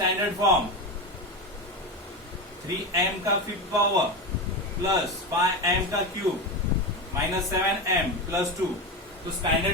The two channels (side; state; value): both; normal; correlation 0.18